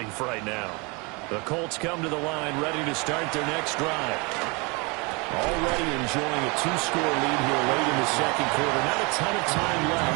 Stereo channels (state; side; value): quieter; left; 29.3 dB